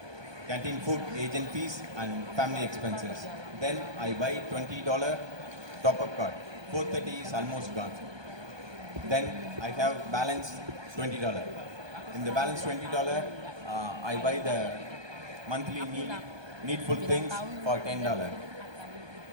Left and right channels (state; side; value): late; left; 1.2 ms